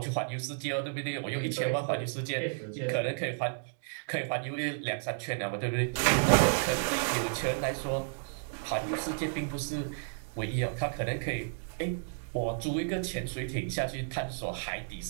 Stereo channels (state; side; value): silent; left; digital silence